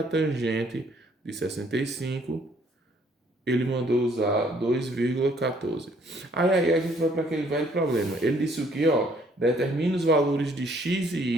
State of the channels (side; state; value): both; normal; correlation 0.63